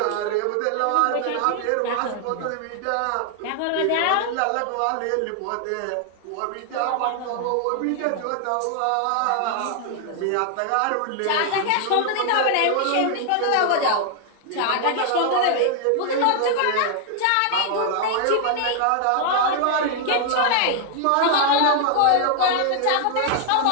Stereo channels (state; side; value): different; both; correlation 0.00